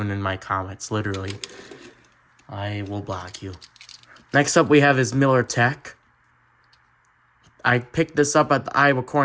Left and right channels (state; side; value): identical; both; correlation 1.00